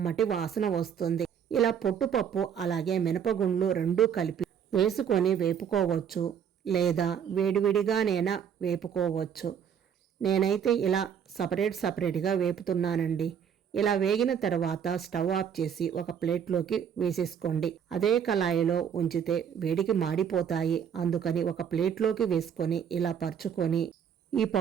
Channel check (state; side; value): quieter; left; 8.1 dB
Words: వాసన వస్తుంది. ఇలా పొట్టుపప్పు అలాగే మినపగుండ్లు రెండూ కలిపి వేసుకొని వేపుకోవచ్చు, లేదా వేడివిడిగానైనా వేపుకోవచ్చు. నేనైతే ఇలా సపరేట్గా వేపుతున్నానండి. ఇలా వేగిన తర్వాత స్టవ్ ఆఫ్ చేసి ఒక ప్లేట్లోకి వేసేసుకోండి. అదే కళాయిలో ఉంచితే వేడికి మాడిపోతాయి. అందుకని ఒక ప్లేట్లోకి వేసుకొని ఇలా పరుచుకొని ఈ